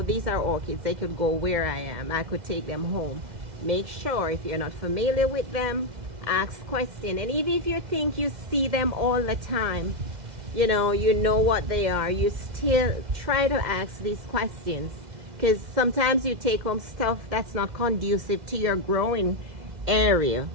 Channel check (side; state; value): left; late; 2.0 ms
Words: these are orchids, they could go where I am, I could take them home. Make sure, if you're not familiar with them, ask questions. And even if you think you see them all the time, you know what they are, you still try to ask these questions, because sometimes you take home stuff that's not conducive to your growing area,